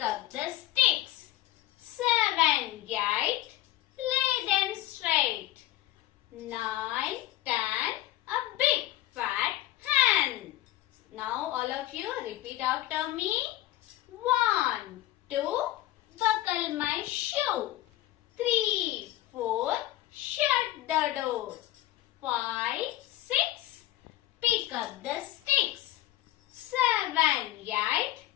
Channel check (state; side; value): quieter; right; 15.6 dB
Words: up the sticks. 7, 8, lay them straight. 9, 10, a big fat hen. Now all of you repeat after me. 1, 2, buckle my shoe. 3, 4, shut the door. 5, 6, pick up the sticks. 7, 8,